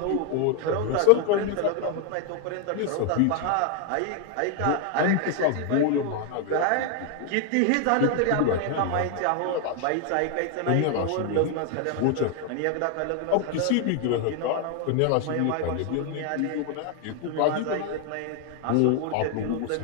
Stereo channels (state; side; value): different; both; correlation 0.00